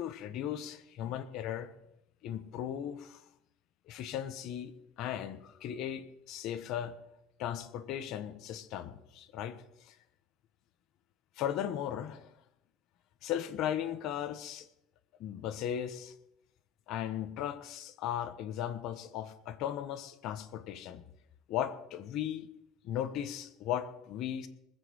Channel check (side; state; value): right; quieter; 10.0 dB